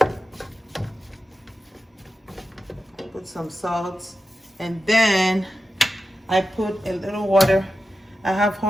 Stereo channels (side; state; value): both; normal; correlation 0.92